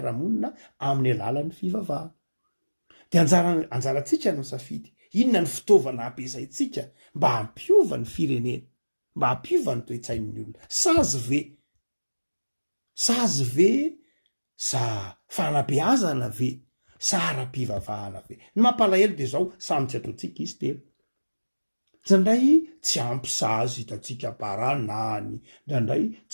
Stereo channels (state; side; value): inverted; both; correlation -1.00